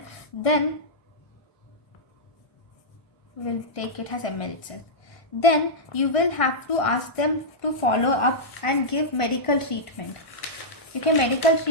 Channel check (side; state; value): right; late; 1.5 ms